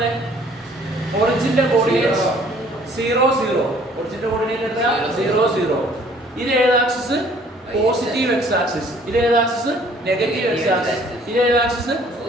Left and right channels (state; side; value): normal; both; correlation 0.57